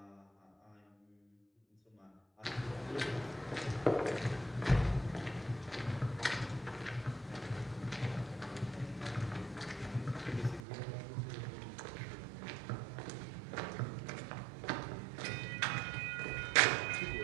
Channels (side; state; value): left; drops out; at 10.6 s